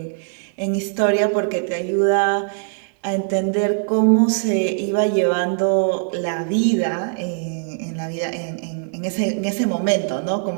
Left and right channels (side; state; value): left; silent; 57 dB below the other